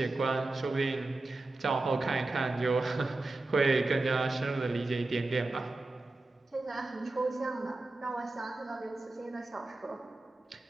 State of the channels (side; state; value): left; quieter; 3.1 dB